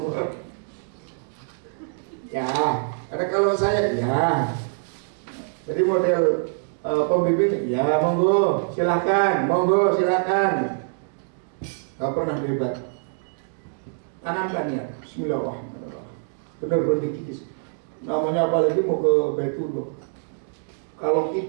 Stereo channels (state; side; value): silent; left; digital silence